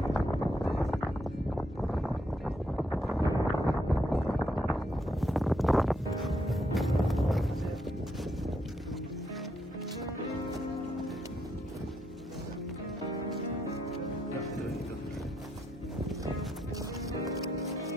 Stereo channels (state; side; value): normal; both; correlation 0.77